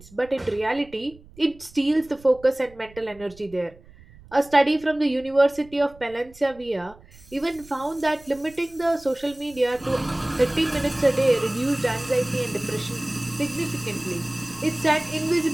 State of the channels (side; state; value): right; noise; rumble, 23 dB below the sound